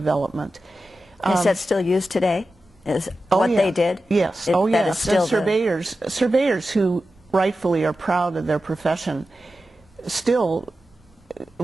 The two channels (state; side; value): normal; both; correlation 0.92